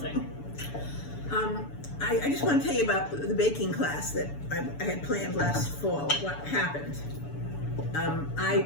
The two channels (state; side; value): late; right; 6.9 ms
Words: I just want to tell you about the baking class that I had planned last fall. What happened?